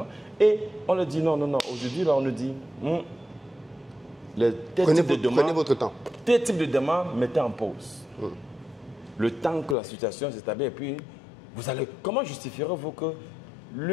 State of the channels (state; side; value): drops out; right; at 9.8 s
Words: et on leur dit non. Aujourd'hui, là, on nous dit prenez votre temps. Tel type de demande, mettez en pause. Le temps que la situation s'établit et puis vous allez. Comment justifierez-vous que